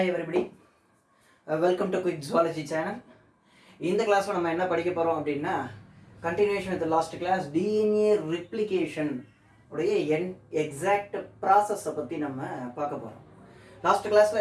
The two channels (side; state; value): both; identical; correlation 1.00